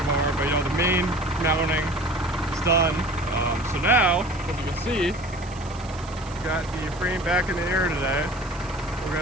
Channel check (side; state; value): right; noise; hiss, 20 dB below the sound